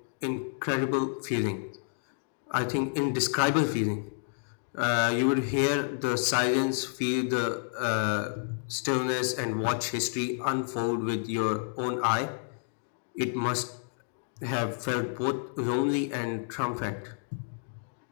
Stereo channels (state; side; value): silent; right; digital silence